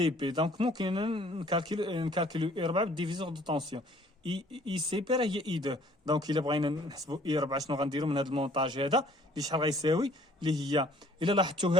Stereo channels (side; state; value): both; normal; correlation 0.58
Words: بي، دونك ممكن نكالكيلو اي 4 بالديفيزور دو طونسيون. اي سي بي راه هي اي 2، دونك الا بغينا نحسبوا اي 4 شنو غنديرو من هذا المونطاج هذا اللي شحال غيساوي، اللي هي الا لاحظتوا